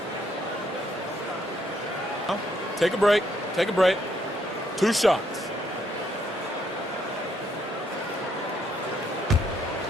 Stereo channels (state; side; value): normal; both; correlation 0.72